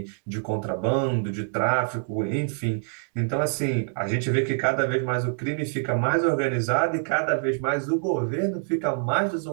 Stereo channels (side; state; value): left; silent; 60 dB below the other